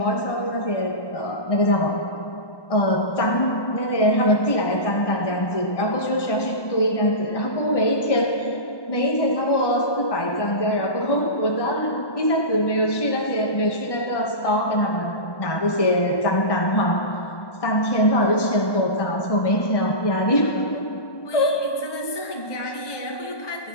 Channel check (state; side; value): late; right; 1.2 ms